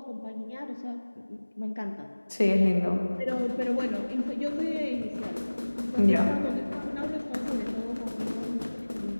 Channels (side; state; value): both; inverted; correlation -1.00